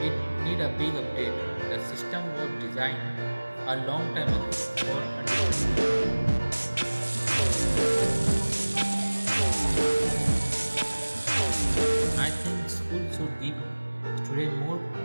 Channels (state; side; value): inverted; both; correlation -1.00